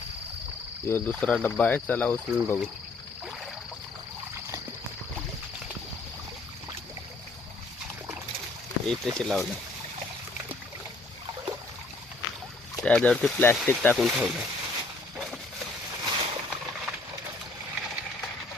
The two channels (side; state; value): right; quieter; 3.3 dB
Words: यो दुसरा डब्बा आहे, चला उचलून बघू. इथे लावलं, त्याच्यावरती प्लॅस्टिक टाकून ठेवलं.